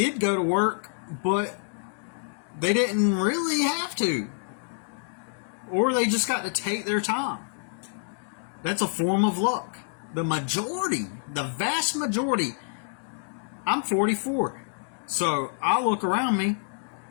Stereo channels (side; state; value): right; silent; digital silence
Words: go to work, but they didn't really have to. Or they just got to take their time. That's a form of luck. The vast majority, I'm 44. So I look around me,